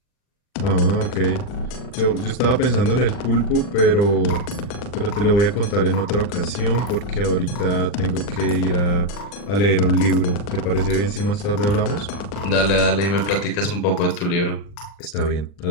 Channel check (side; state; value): right; late; 40 ms